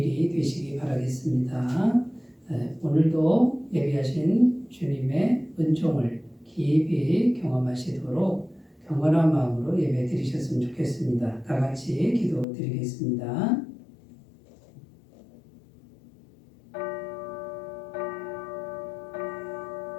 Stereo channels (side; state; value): right; drops out; at 12.5 s